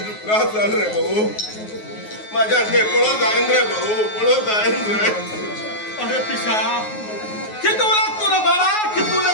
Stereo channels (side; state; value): right; late; 9.4 ms